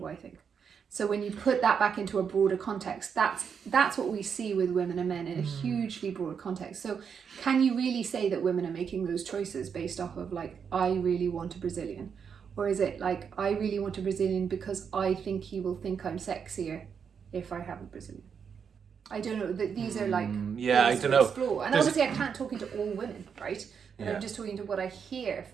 I think? So when you put that back into a broader context, that's what we see with women and men in a hugely broad context. So can you really say that women are making those choices based off of like, I really want a Brazilian? Or is it like, I really want a Brazilian because I think he will think I'm sexier if I have a Brazilian? I don't know. These are like, I don't know. Explore. And obviously I can't talk into all women, right? And I'm just talking to what I hear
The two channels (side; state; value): left; quieter; 6.8 dB